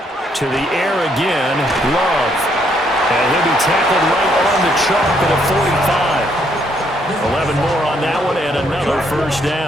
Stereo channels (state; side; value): normal; both; correlation 0.71